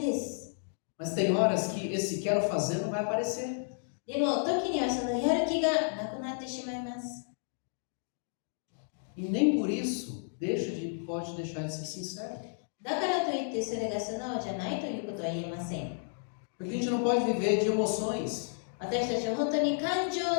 です。 Mas tem horas que esse quero fazer não vai aparecer. でも、時にはそのやる気がなくなってしまいます。 E nem por isso pode deixar de ser sincero. だからといってそれが素直じゃないということは言えません。 Porque a gente não pode viver de emoções. 私たちは本当に感情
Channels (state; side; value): silent; right; digital silence